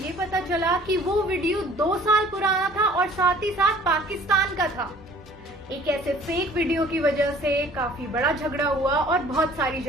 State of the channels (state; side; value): normal; both; correlation 0.52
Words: पता चला कि वो वीडियो 2 साल पुराना था और साथ ही साथ पाकिस्तान का था। एक ऐसे फेक वीडियो की वजह से काफी बड़ा झगड़ा हुआ और बहुत सारी